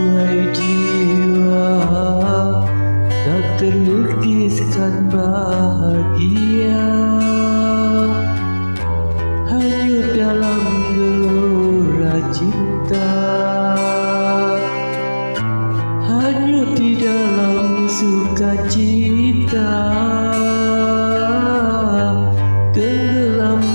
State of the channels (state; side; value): inverted; both; correlation -1.00